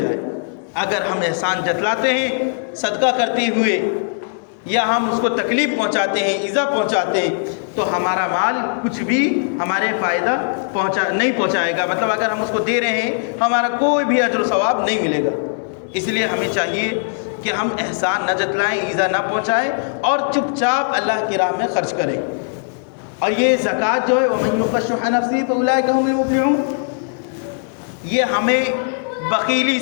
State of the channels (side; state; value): right; silent; digital silence